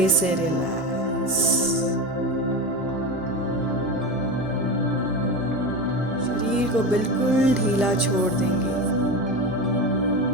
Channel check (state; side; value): normal; both; correlation 0.22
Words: से रिलैक्स। शरीर को बिल्कुल ढीला छोड़ देंगे।